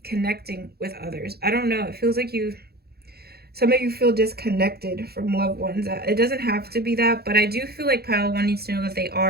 connecting with others. I don't know. It feels like some of you feel disconnected from loved ones. It doesn't have to be that, but I do feel like pile one needs to know that they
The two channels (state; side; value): late; left; 0.46 ms